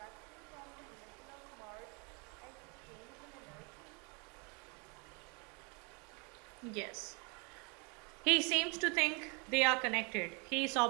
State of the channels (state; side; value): quieter; left; 32.7 dB